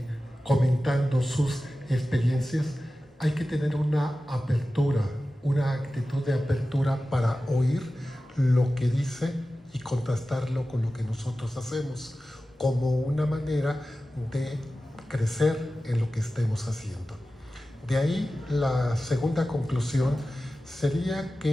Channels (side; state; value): both; normal; correlation 0.95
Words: comentando sus experiencias, hay que tener una apertura, una actitud de apertura para oír lo que dice y contrastarlo con lo que nosotros hacemos, como una manera de crecer en lo que estemos haciendo. De ahí la segunda conclusión sería